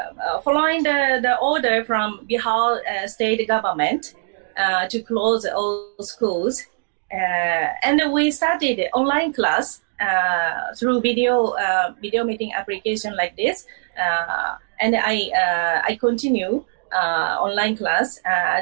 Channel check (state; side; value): silent; left; digital silence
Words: following the order from Bihar state government to close all schools. And we started online class through video meeting application like this. And I continue online class